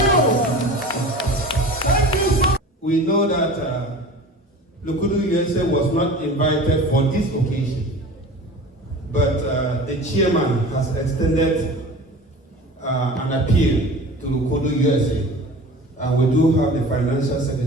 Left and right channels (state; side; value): normal; both; correlation 0.38